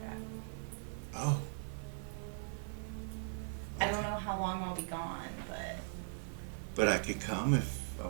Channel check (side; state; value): left; silent; 51 dB below the other